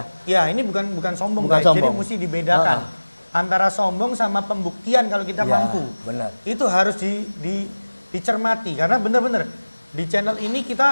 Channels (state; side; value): inverted; both; correlation -1.00